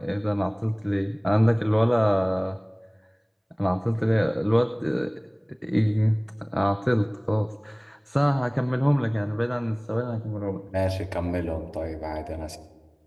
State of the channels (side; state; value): both; identical; correlation 1.00